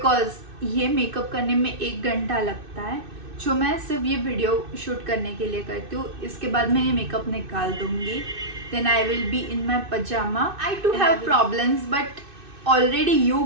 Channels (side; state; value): left; late; 2.6 ms